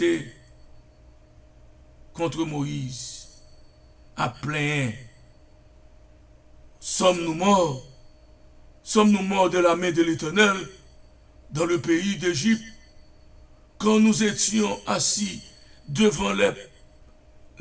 contre Moïse à plein. Sommes-nous morts? Sommes-nous morts de la main de l'Éternel dans le pays d'Égypte quand nous étions assis devant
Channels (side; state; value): both; identical; correlation 1.00